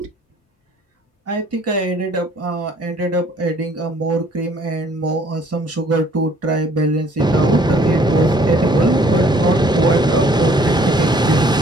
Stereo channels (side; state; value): both; normal; correlation 0.59